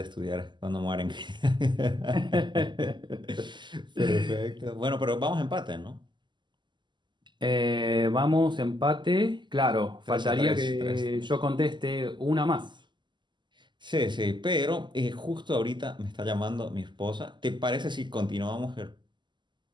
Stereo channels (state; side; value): late; left; 0.22 ms